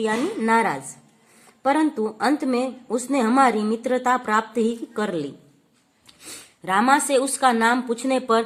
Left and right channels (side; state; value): both; identical; correlation 1.00